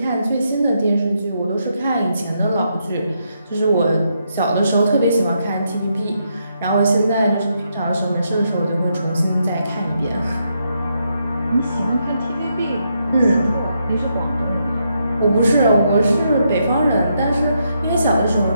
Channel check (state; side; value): inverted; both; correlation -0.79